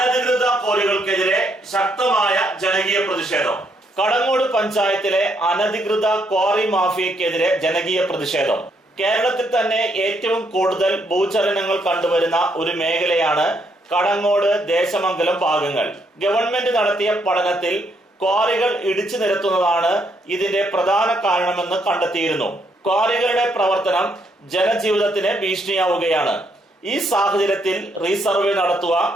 ക്വാറികൾക്കെതിരെ ശക്തമായ ജനകീയ പ്രതിഷേധം. കടങ്ങോട് പഞ്ചായത്തിലെ അനധികൃത ക്വാറി മാഫിയക്കെതിരെ ജനകീയ പ്രതിഷേധം. കേരളത്തിൽ തന്നെ ഏറ്റവും കൂടുതൽ ഭൂചലനങ്ങൾ കണ്ടുവരുന്ന ഒരു മേഖലയാണ് കടങ്ങോട് ദേശമംഗലം ഭാഗങ്ങൾ. ഗവൺമെന്റ് നടത്തിയ പഠനത്തിൽ ക്വാറികൾ ഇടിച്ചു നിരത്തുന്നതാണ് ഇതിന്റെ പ്രധാന കാരണമെന്ന് കണ്ടെത്തിയിരുന്നു. ക്വാറികളുടെ പ്രവർത്തനം ജനജീവിതത്തിന് ഭീഷണിയാവുകയാണ്. ഈ സാഹചര്യത്തിൽ റീസർവേ നടത്തുക,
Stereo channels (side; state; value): both; normal; correlation 0.74